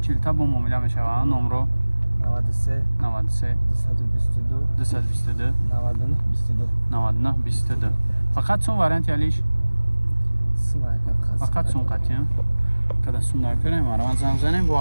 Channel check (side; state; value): both; inverted; correlation -1.00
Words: با مومیله میشه و نمرو 93 93 222 222 99 22 99 22 فقط سون وارنت یالیش؟ سون فقط سون قطعی هم؟ که سون نکنیم من زنگ زنیم